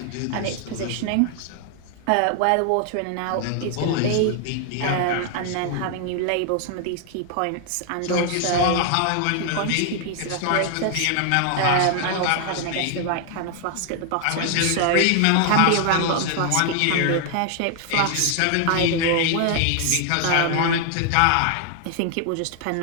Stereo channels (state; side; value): different; both; correlation 0.00